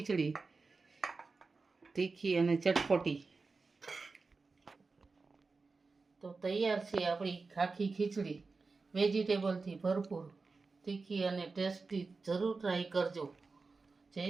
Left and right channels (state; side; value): quieter; left; 4.1 dB